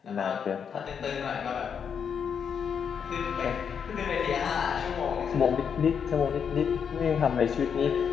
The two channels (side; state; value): right; quieter; 7.2 dB